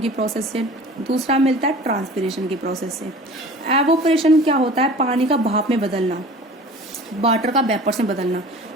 की प्रोसेस से, दूसरा मिलता है ट्रांसपीरेशन की प्रोसेस से। एवोपरेशन क्या होता है? पानी का भाप में बदलना, वाटर का वेपर्स में बदलना।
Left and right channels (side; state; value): both; normal; correlation 0.42